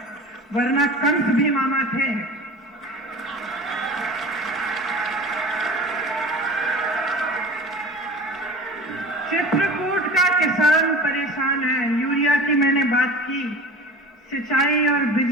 वरना कंस भी मामा थे। चित्रकूट का किसान परेशान है। यूरिया की मैंने बात की, सिंचाई और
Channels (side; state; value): both; normal; correlation 0.37